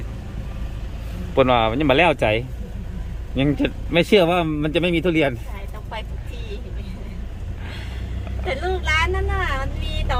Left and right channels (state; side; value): identical; both; correlation 1.00